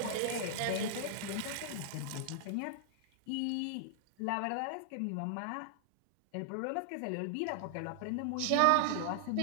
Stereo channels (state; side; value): different; both; correlation -0.01